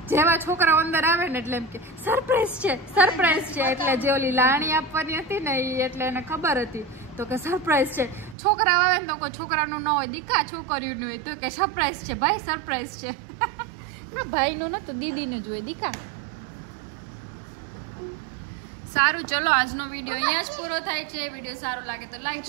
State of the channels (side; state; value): left; drops out; at 8.3 s